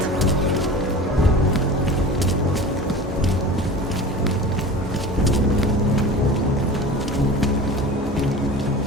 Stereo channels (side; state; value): both; normal; correlation 0.36